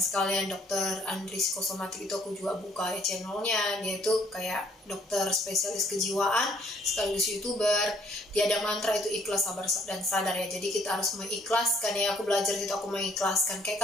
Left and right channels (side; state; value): both; normal; correlation 0.62